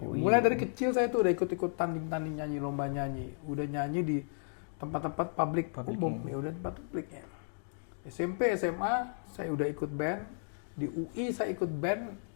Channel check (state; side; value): silent; right; digital silence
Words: dari kecil saya tuh udah ikut-ikut tanding-tanding nyanyi, lomba nyanyi, udah nyanyi di tempat-tempat publik umum, ya udah tempat publik ya. SMP, SMA saya udah ikut band. Di UI saya ikut band